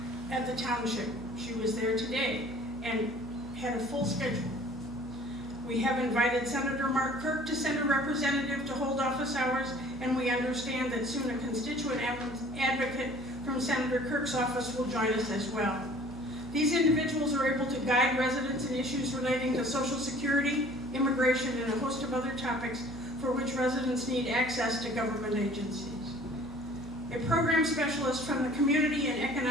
at the township. She was there today and had a full schedule. We have invited Senator Mark Kirk to send a representative to hold office hours, and we understand that soon a constituent advocate from Senator Kirk's office will join us as well. These individuals are able to guide residents in issues relating to Social Security, immigration, and a host of other topics for which residents need access to government agencies. A program specialist from the Community and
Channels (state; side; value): noise; right; hum, 15 dB below the sound